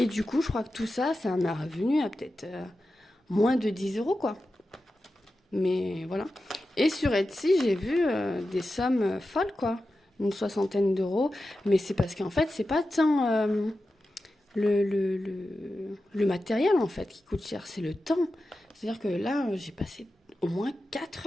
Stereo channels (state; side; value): normal; both; correlation 0.92